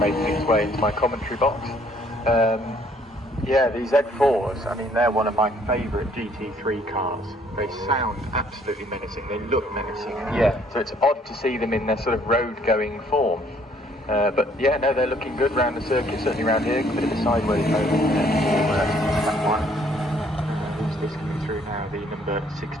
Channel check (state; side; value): normal; both; correlation 0.63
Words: its way into my commentary box. Yeah, these Z4s, I mean, they're one of my favourite GT3 cars. They sound absolutely menacing, they look menacing. Yeah, so it's odd to see them in their sort of road-going form. But yeah, no, they're looking good round the circuit, certainly around here. A bit of a sideways mode in there for that one. Who's this coming through now? The number